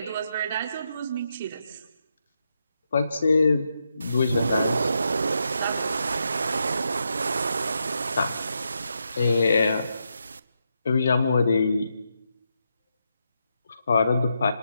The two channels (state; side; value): inverted; both; correlation -0.83